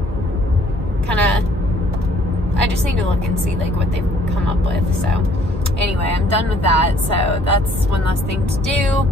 I just need to look and see like what they've come up with. So anyway, I'm done with that. So that's one less thing to do.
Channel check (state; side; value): normal; both; correlation 0.61